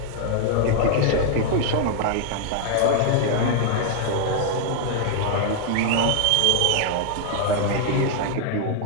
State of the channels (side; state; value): both; different; correlation 0.00